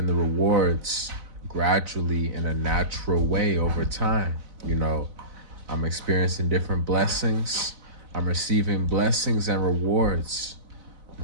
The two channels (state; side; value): late; left; 4.0 ms